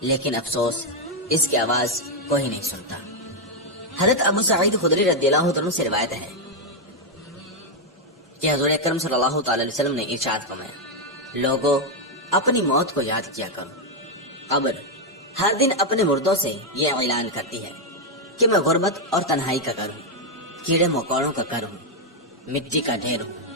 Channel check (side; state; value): both; normal; correlation 0.01